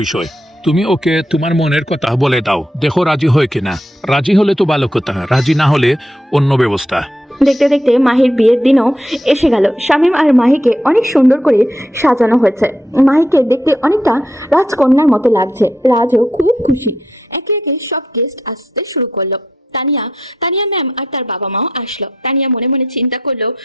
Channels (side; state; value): both; normal; correlation 0.80